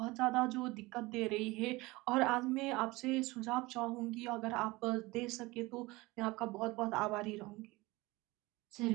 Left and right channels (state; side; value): quieter; left; 21.6 dB